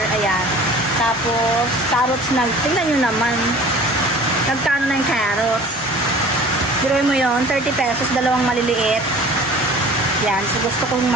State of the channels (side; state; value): both; normal; correlation 0.45